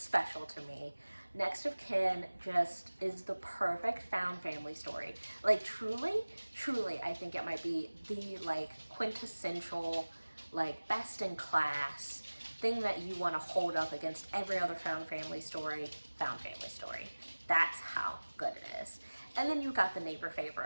to me. Next of Kin just is the perfect found family story. Like truly, I think it might be the quintessential, best in class thing that you want to hold up against every other found family story. That's how good it is. And then you got The Neighbor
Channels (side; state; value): both; inverted; correlation -1.00